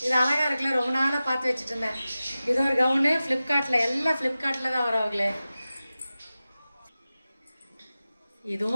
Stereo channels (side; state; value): both; inverted; correlation -0.95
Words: இது அழகாக இருக்குல்ல, ரொம்ப நாளாக பார்த்து வச்சுட்டு இருந்தேன். இது ஒரு கவுனு ஃப்ளிப்கார்ட்டில், எல்லாம் ஃப்ளிப்கார்ட்டில் தான் வரவங்களே.